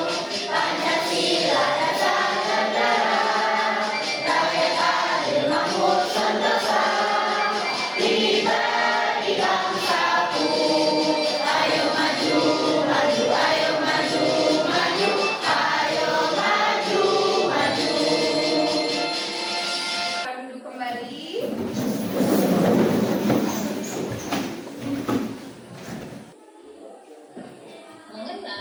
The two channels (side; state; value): both; identical; correlation 1.00